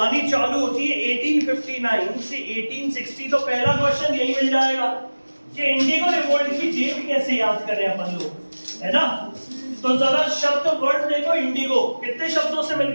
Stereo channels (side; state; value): both; inverted; correlation -1.00